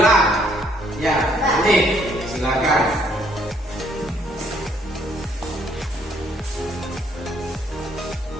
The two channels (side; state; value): both; normal; correlation 0.67